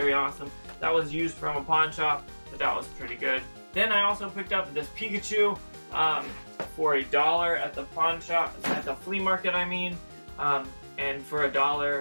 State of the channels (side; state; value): both; inverted; correlation -1.00